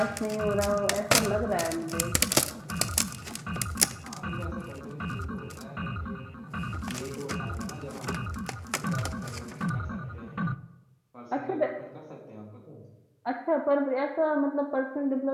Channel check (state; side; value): identical; both; correlation 1.00